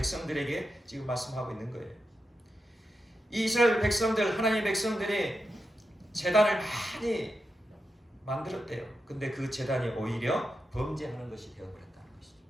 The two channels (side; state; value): both; normal; correlation 0.88